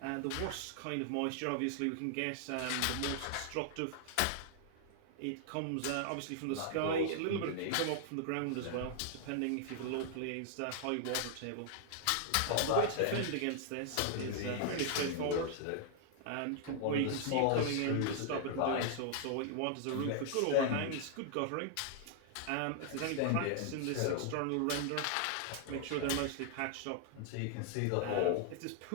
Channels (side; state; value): both; different; correlation 0.00